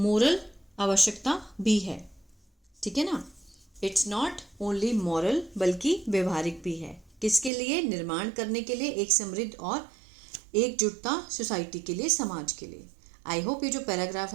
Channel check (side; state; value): left; drops out; at 7.5 s